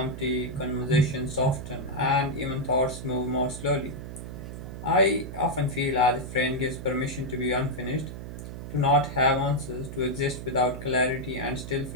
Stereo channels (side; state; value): right; noise; hum, 9 dB below the sound